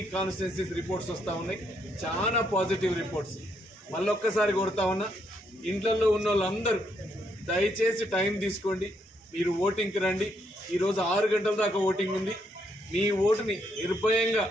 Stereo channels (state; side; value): normal; both; correlation 0.75